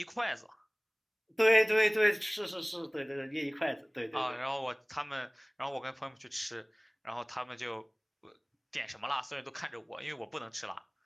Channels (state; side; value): identical; both; correlation 1.00